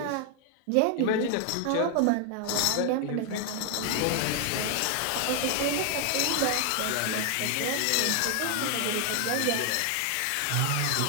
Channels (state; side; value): different; both; correlation 0.00